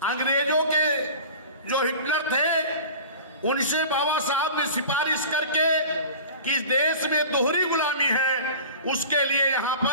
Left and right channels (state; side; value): inverted; both; correlation -0.38